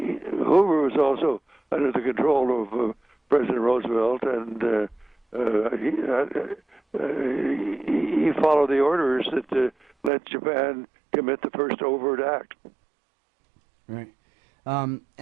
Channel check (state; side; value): drops out; left; at 10.1 s